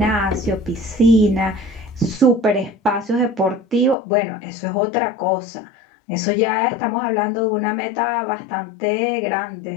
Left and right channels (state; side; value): drops out; right; at 4.0 s